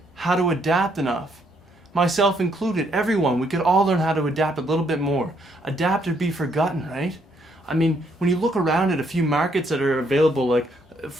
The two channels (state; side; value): normal; both; correlation 0.71